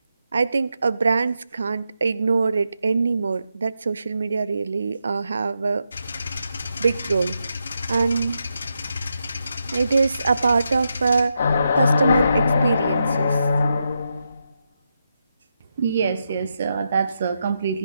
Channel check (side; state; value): both; inverted; correlation -0.84